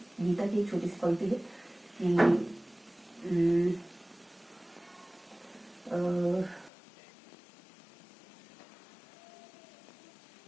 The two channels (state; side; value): drops out; right; at 6.7 s